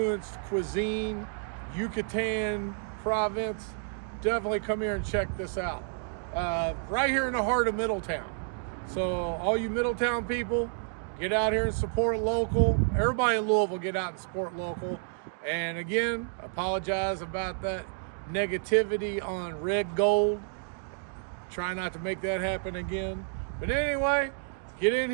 cuisine, Yucatan province, definitely come here and check this out. Right here in the heart of Middletown. So all you Middletown people, get out here and support local. Everybody in Louisville, get out and support local. And again, apologize about that negativity on red gold. Try not to make that happen again. But anyway, get in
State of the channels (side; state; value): left; silent; digital silence